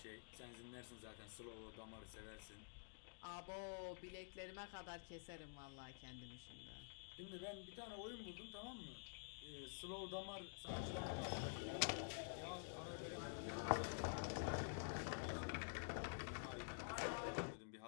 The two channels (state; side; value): silent; right; digital silence